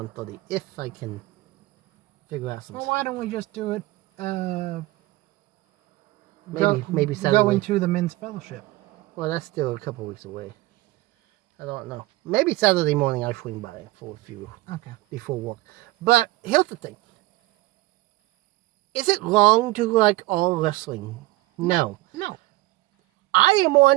if I can figure out some. Well, why don't we just do it? Maybe Saturday. Going to the men's fellowship. Well, that's still a couple weeks away. I don't know. Maybe Saturday morning I swing by for a few. Okay. Before work. But here's the thing. Is it wrong to like all wrestling? No. No. I am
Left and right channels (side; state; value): left; quieter; 19.3 dB